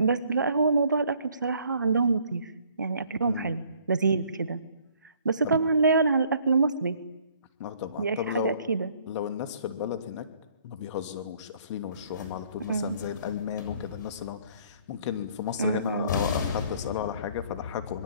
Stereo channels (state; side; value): inverted; both; correlation -0.60